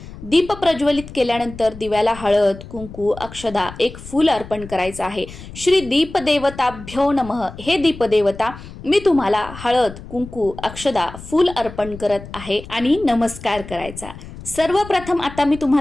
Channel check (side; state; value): left; noise; rumble, 15 dB below the sound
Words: दीप प्रज्वलित केल्यानंतर दिव्याला हळद कुंकू अक्षदा एक फूल अर्पण करायचं आहे. श्री दीपदेवताभ्यो नमः. हे दीपदेवता, मी तुम्हाला हळद कुंकू अक्षदा फूल अर्पण करत आहे आणि नमस्कार करायचा. सर्वप्रथम आता मी